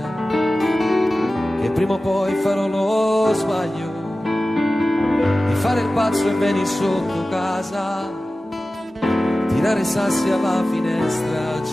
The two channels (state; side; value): normal; both; correlation 0.96